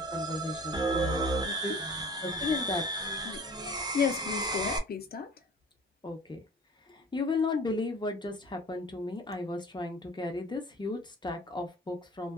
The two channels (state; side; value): normal; both; correlation 0.44